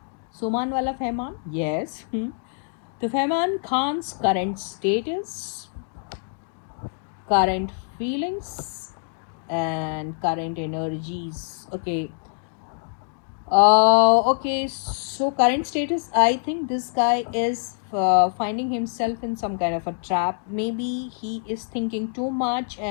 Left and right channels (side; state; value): right; silent; digital silence